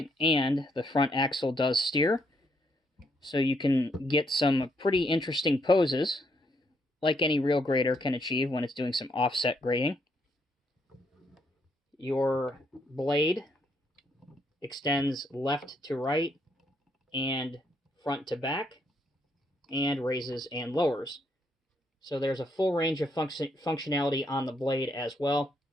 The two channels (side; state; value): both; normal; correlation 0.74